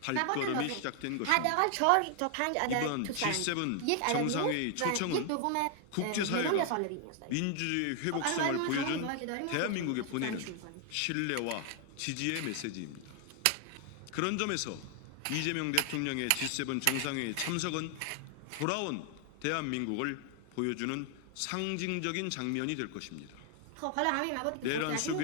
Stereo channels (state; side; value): different; both; correlation 0.00